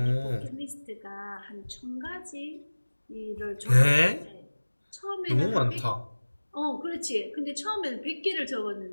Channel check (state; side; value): inverted; both; correlation -1.00